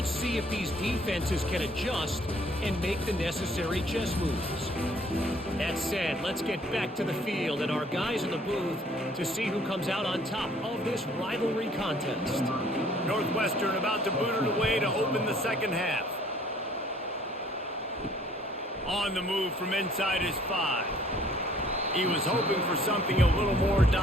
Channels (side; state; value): both; normal; correlation 0.59